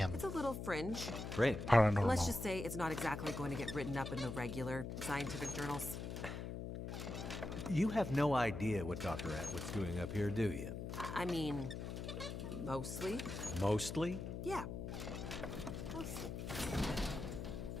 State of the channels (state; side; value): noise; left; hum, 5 dB below the sound